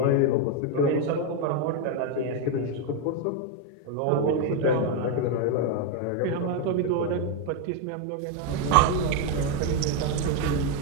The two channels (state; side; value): different; both; correlation 0.01